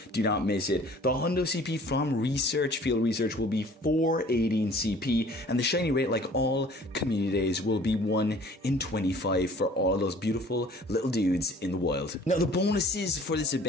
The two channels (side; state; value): both; normal; correlation 0.51